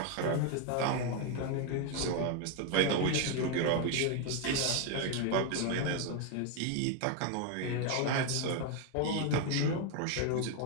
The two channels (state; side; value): different; both; correlation 0.01